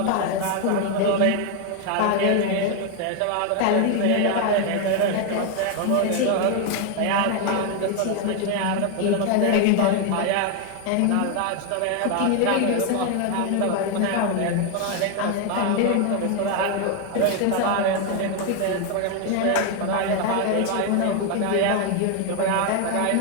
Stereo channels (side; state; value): both; different; correlation 0.01